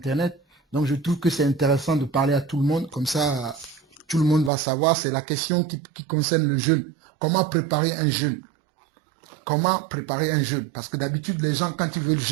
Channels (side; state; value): left; drops out; at 4.5 s